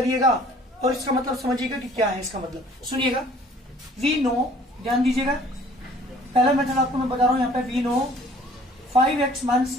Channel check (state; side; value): normal; both; correlation 0.54